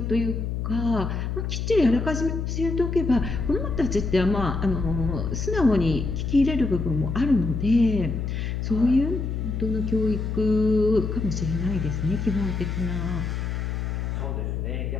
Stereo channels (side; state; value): left; noise; hum, 2 dB below the sound